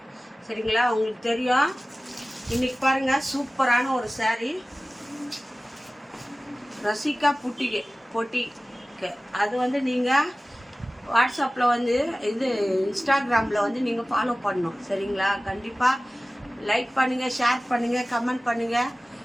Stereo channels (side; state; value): both; normal; correlation 0.97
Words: சரிங்களா? உங்களுக்கு தெரியும். இன்னைக்கு பாருங்க, சூப்பரான ஒரு saree ரசிகா பொட்டிக்கு அது வந்து நீங்கள் வாட்ஸ்அப்பில் வந்து இது இன்ஸ்டாகிராமில் வந்து நீங்கள் ஃபாலோ பண்ணணும். சரிங்களா? கண்டிப்பாக லைக் பண்ணுங்கள், ஷேர் பண்ணுங்கள், கமெண்ட் பண்ணுங்கள்.